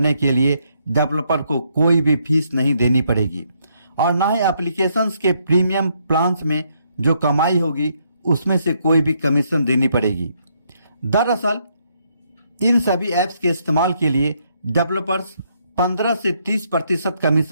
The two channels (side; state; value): both; inverted; correlation -0.73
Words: के लिए डेवलपर को कोई भी फीस नहीं देनी पड़ेगी और ना ही एप्लीकेशंस के प्रीमियम प्लान्स में जो कमाई होगी उसमें से कोई भी कमीशन देनी पड़ेगी। दरअसल इन सभी ऐप्स के इस्तेमाल के लिए डेवलपर्स 15 से 30%